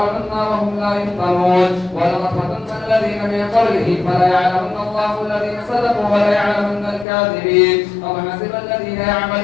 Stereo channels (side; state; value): right; drops out; at 7.1 s